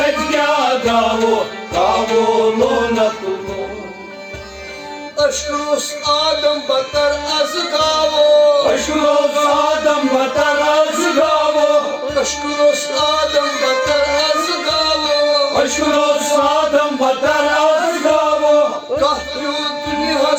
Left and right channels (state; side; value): identical; both; correlation 1.00